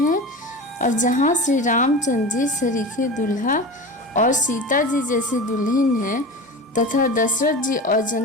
और जहाँ श्री रामचंद्र जी सरीखे दुल्हा और सीता जी जैसी दुल्हन हैं, तथा दशरथ जी और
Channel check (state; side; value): normal; both; correlation 0.30